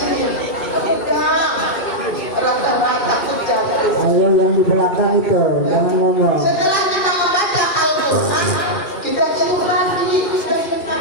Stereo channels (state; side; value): late; right; 2.4 ms